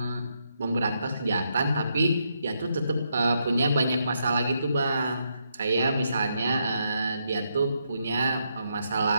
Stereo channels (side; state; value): both; inverted; correlation -0.79